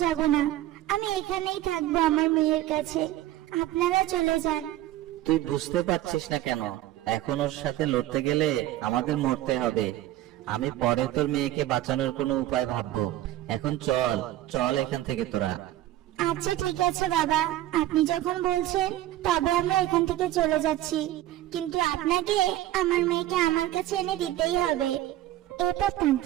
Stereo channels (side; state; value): left; quieter; 14.4 dB